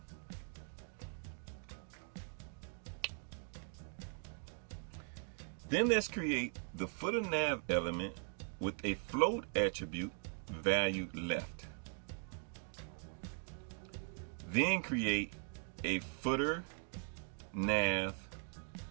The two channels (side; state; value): left; silent; 51 dB below the other